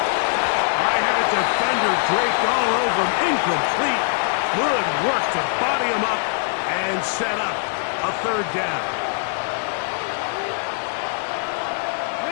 I had a defender draped all over him, incomplete. Good work to body him up and set up a third down.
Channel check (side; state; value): right; silent; digital silence